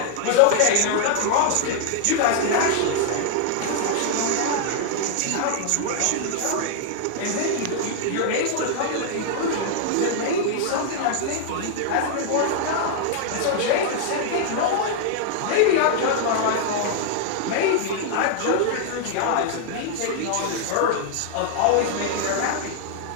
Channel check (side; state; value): both; different; correlation 0.00